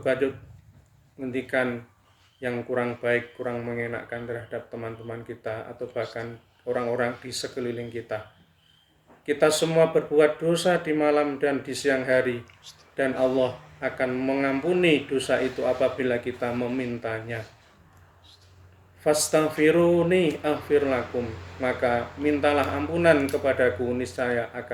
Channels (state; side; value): identical; both; correlation 1.00